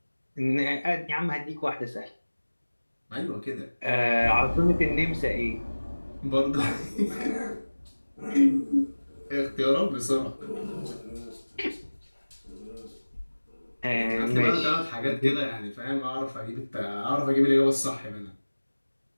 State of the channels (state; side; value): inverted; both; correlation -1.00